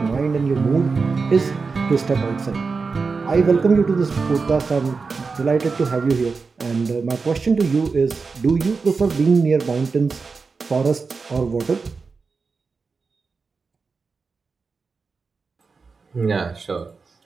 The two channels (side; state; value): left; quieter; 4.6 dB